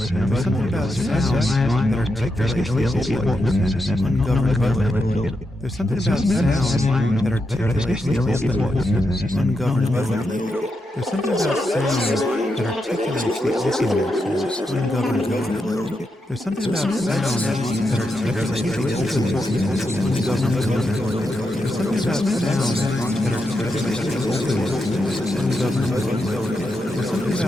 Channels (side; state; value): both; normal; correlation 0.85